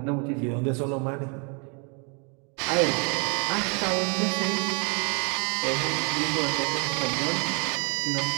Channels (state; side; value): quieter; left; 35.0 dB